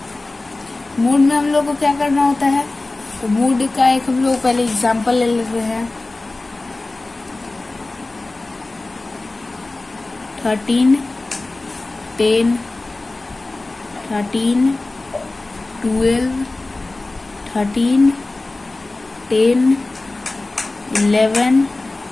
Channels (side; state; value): right; quieter; 3.1 dB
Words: Mood में हम लोग को क्या करना होता है, तो मूड का एक हम लोग पहले एग्जांपल ले लेते हैं। 13, 10, 13, 12, 13, 10, 11